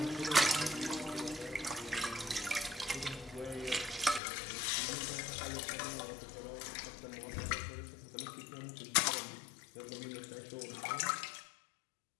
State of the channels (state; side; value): drops out; right; at 4.2 s